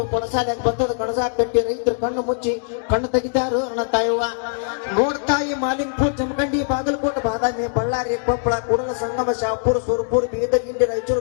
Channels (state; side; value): silent; right; digital silence